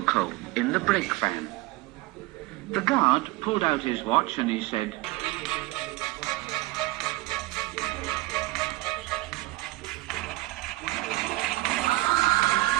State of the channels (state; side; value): quieter; left; 19.8 dB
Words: in the brake van. The guard pulled out his watch and he said,